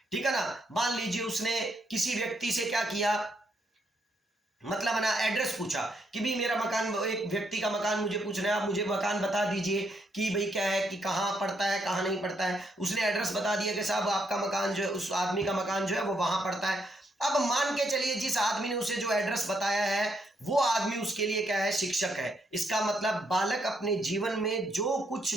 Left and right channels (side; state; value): both; normal; correlation 0.75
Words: ठीक है ना, मान लीजिए उसने किसी व्यक्ति से क्या किया, मतलब ना एड्रेस पूछा कि भाई मेरा मकान, एक व्यक्ति का मकान मुझे पूछना है, आप मुझे मकान बता दीजिए कि भाई क्या है, कि कहाँ पड़ता है, कहाँ नहीं पड़ता है। उसने एड्रेस बता दिया कि साहब आपका मकान जो है, उस आदमी का मकान जो है वो वहां पड़ता है। अब मान के चलिए जिस आदमी ने उसे जो एड्रेस बताया है वो आदमी उसके लिए क्या है, शिक्षक है। इसका मतलब बालक अपने जीवन में जो कुछ